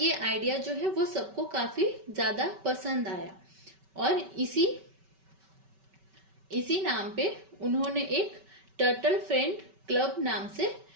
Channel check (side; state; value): left; late; 5.2 ms